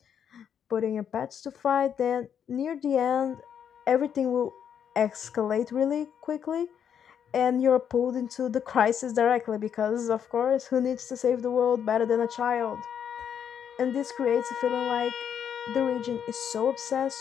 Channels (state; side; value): quieter; right; 8.3 dB